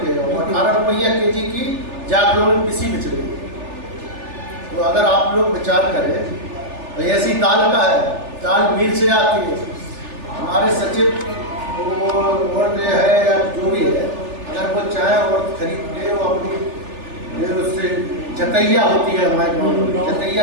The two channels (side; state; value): left; late; 3.4 ms